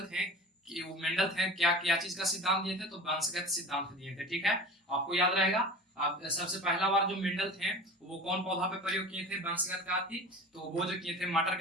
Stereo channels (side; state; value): both; normal; correlation 0.36